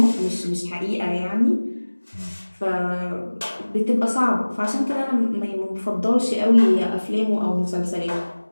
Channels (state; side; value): inverted; both; correlation -1.00